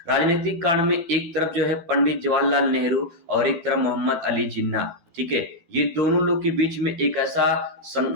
राजनीतिक कारण में एक तरफ जो है पंडित जवाहरलाल नेहरू और एक तरफ मोहम्मद अली जिन्ना। ठीक है, ये दोनों लोग के बीच में एक ऐसा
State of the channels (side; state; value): left; late; 12 ms